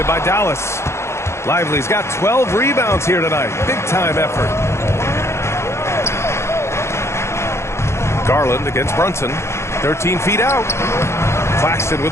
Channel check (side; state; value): right; late; 0.13 ms